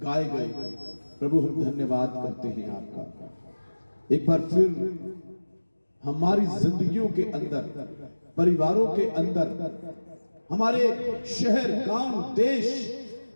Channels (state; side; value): inverted; both; correlation -1.00